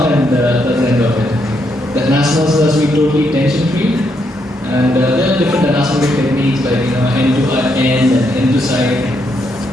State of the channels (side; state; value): both; normal; correlation 0.77